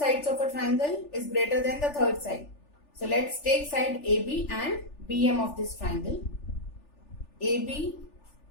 of a triangle is greater than the third side. So let's take side AB and BM of this triangle. AB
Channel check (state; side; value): late; right; 3.4 ms